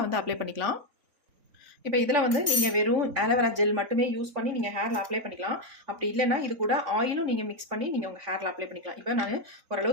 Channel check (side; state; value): left; late; 3.5 ms